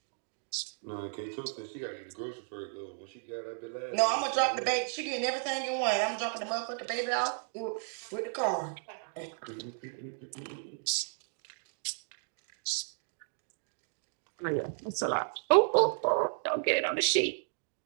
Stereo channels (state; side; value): silent; left; 55 dB below the other